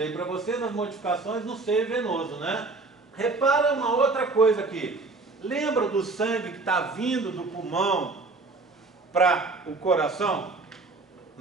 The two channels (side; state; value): left; quieter; 3.6 dB